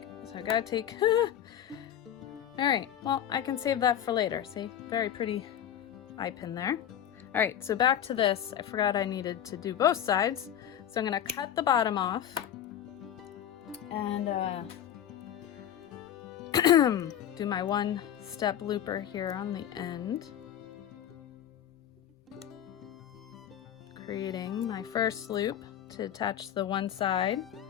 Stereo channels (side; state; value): right; quieter; 10.2 dB